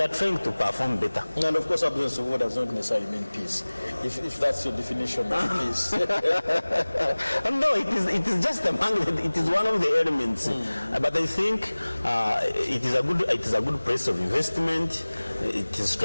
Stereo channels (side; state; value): both; inverted; correlation -1.00